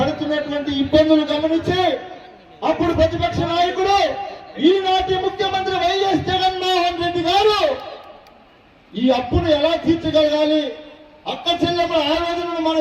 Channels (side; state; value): both; identical; correlation 1.00